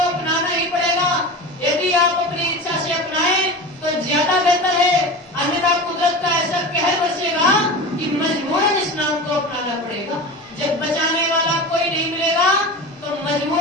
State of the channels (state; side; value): normal; both; correlation 0.30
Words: अपनाना ही पड़ेगा। यदि आप अपनी इच्छा से अपनाएं तो ज्यादा बेहतर है, अन्यथा कुदरत का ऐसा कहर बरसेगा कि मजबूरन इस नाम को अपनाना पड़ेगा। जब बचाने वाला कोई नहीं मिलेगा तो